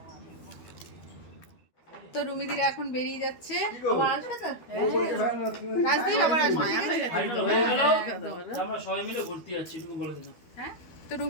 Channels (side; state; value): right; late; 12 ms